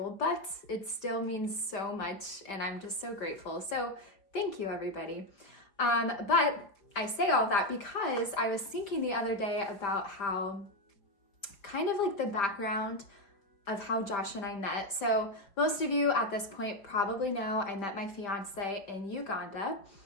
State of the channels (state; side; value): late; right; 5.1 ms